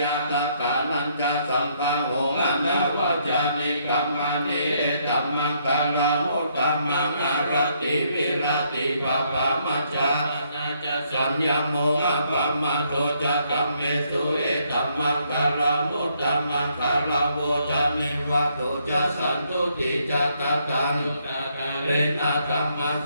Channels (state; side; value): inverted; both; correlation -0.71